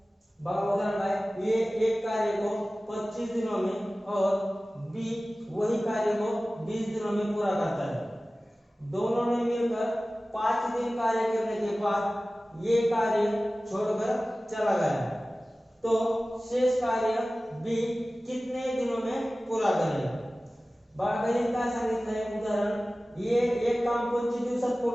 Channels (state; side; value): normal; both; correlation 0.97